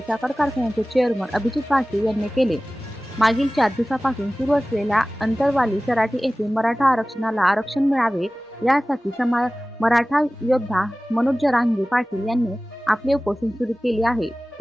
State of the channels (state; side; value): normal; both; correlation 0.97